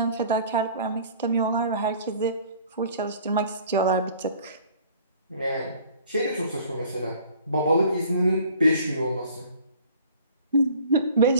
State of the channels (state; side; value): inverted; both; correlation -0.51